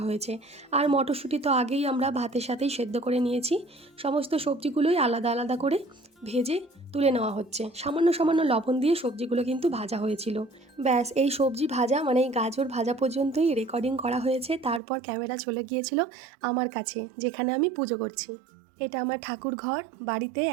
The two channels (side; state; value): left; drops out; at 14.8 s